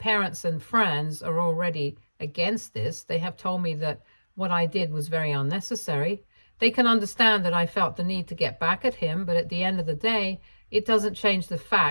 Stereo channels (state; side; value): inverted; both; correlation -1.00